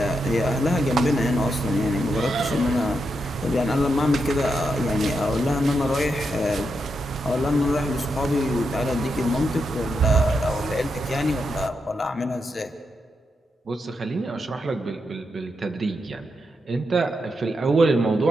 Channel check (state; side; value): normal; both; correlation 0.84